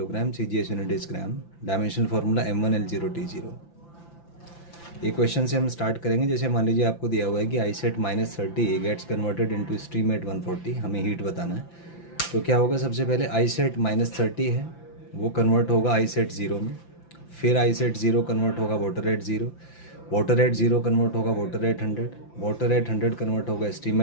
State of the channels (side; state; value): right; late; 5.9 ms